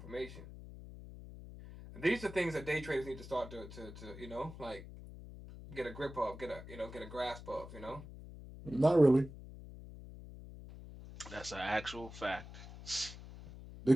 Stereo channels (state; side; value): noise; left; hum, 14 dB below the sound